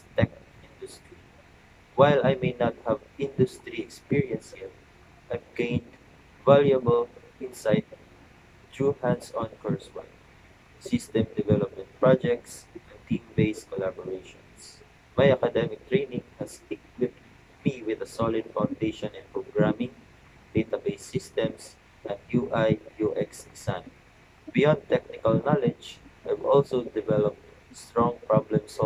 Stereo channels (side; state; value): both; identical; correlation 1.00